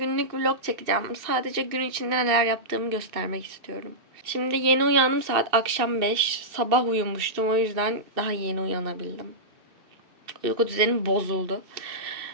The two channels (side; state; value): left; late; 2.6 ms